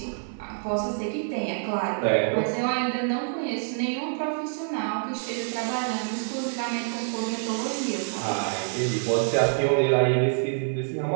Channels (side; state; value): left; silent; digital silence